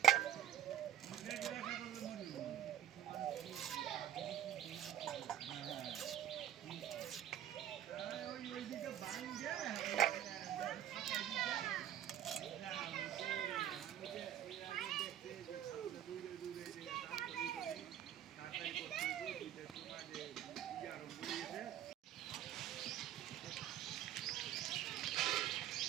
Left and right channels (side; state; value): left; quieter; 10.5 dB